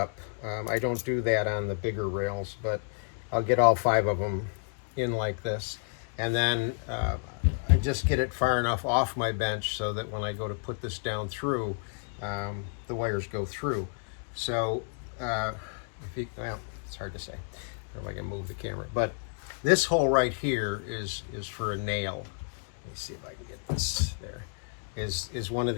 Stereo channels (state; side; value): silent; right; 57 dB below the other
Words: I don't do that on the bigger rails, but I'll get all 5 of them in like this. And then I just get it far enough off my bench so that when I go to put this down through, the wires go through. So, well, it's hard to say. I don't know if I can move the camera. But this hole right here is for a nail. Let me see if I can get this there. Is one of